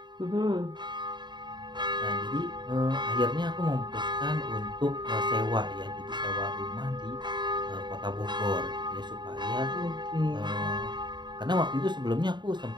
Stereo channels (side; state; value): left; late; 0.22 ms